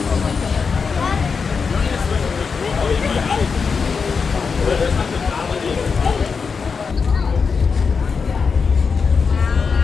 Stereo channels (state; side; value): quieter; right; 5.4 dB